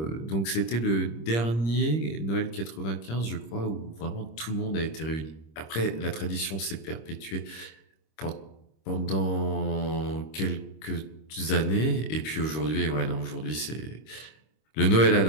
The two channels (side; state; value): right; late; 26 ms